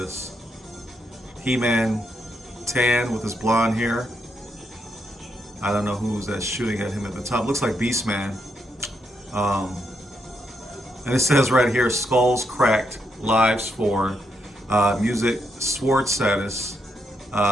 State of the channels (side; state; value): both; normal; correlation 0.79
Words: He-Man, tan with his blonde hair. I don't know who's that shooting at him at the top. Looks like Beastman. And it says right here, skulls cracked, lives for music, sword status,